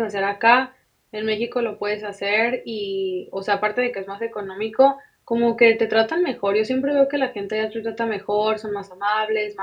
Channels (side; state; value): both; identical; correlation 1.00